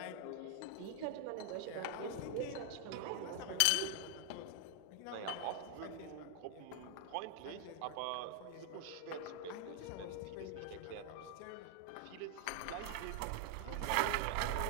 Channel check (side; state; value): both; different; correlation 0.00